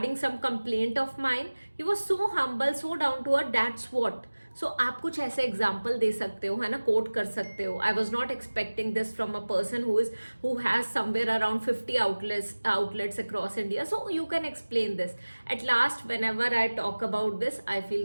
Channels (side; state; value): both; inverted; correlation -1.00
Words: some complaint of mine, he was so humble, so down to earth. That's what. So आप कुछ ऐसे एग्जाम्पल दे सकते हो, है ना, कोट कर सकते हो. आई was not expecting this from a person who has somewhere around 50 outlets across India. So you can explain this. At last, whenever I talk about this, I